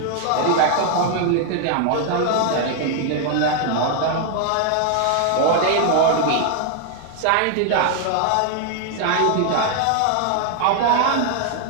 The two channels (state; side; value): different; both; correlation 0.00